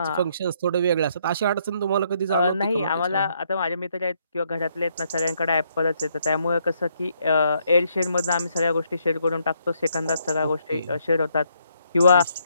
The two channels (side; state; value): both; inverted; correlation -0.72